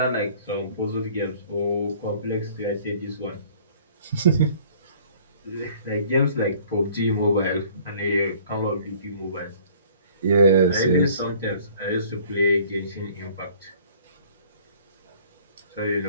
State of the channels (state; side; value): inverted; both; correlation -0.53